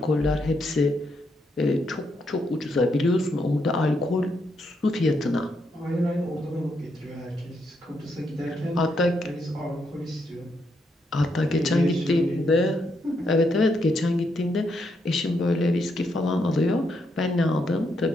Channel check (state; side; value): normal; both; correlation 0.78